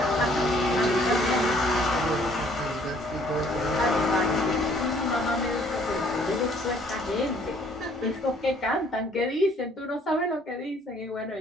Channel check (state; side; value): normal; both; correlation 0.61